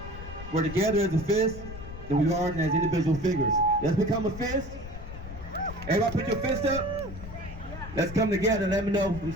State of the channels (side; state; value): left; noise; rumble, 11 dB below the sound